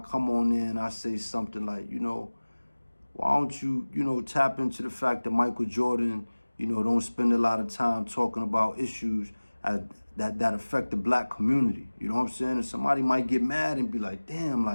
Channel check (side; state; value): both; inverted; correlation -1.00